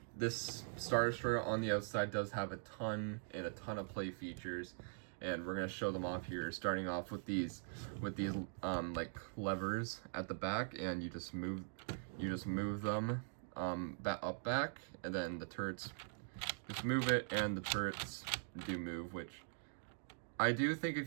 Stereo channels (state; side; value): silent; left; digital silence